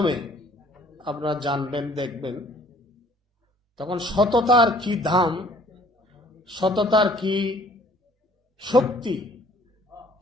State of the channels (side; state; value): both; normal; correlation 0.57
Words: আপনারা জানবেন, দেখবেন, তখন সততার কি দাম, সততার কি শক্তি